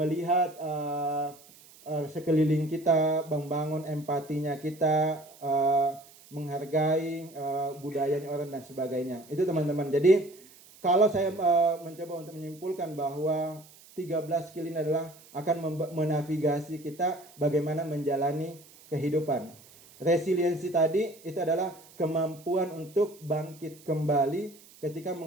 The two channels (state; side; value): noise; right; hiss, 23 dB below the sound